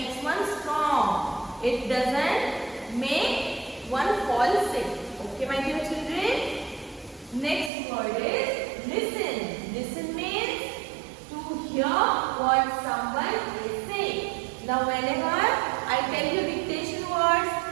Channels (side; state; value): left; drops out; at 7.7 s